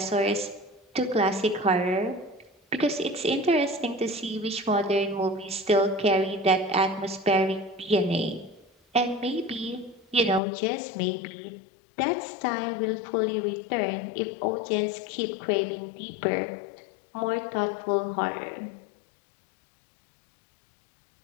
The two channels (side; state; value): right; drops out; at 10.4 s